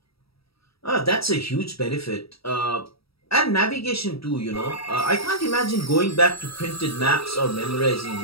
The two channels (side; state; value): right; late; 0.76 ms